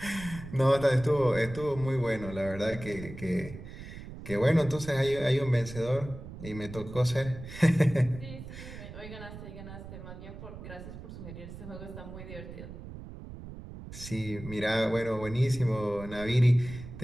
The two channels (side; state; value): right; noise; rumble, 12 dB below the sound